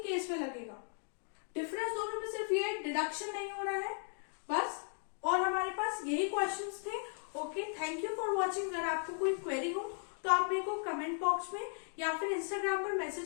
केस में लगेगा। डिफरेंस दोनों में सिर्फ ये डिडक्शन नहीं हो रहा है बस। और हमारे पास यही क्वेश्चंस थे। Okay, thank you for watching. अगर आपको कोई क्वेरी हो तो आप मेरे को कमेंट बॉक्स में या फिर इंस्टाग्राम पर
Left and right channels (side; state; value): right; silent; 53 dB below the other